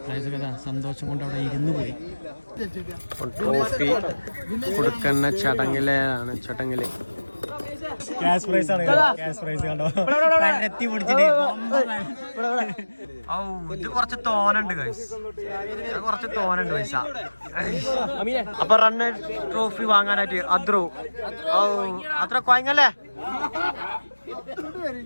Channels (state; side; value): inverted; both; correlation -1.00